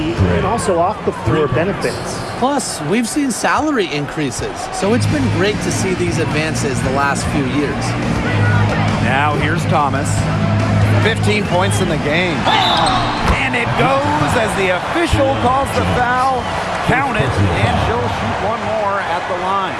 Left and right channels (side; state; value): both; identical; correlation 1.00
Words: and also off-the-floor benefits. Plus, we've seen salary increases, so it's been great to see these advances the last few years. Now here's Thomas. 15 points in the game. And it goes as the official calls the foul. Count it, and she'll shoot one more at the line.